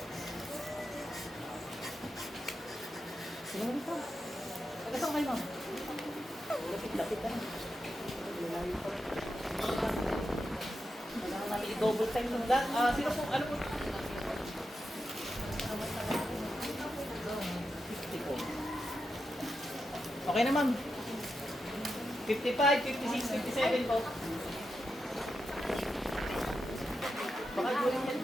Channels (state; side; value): normal; both; correlation 0.87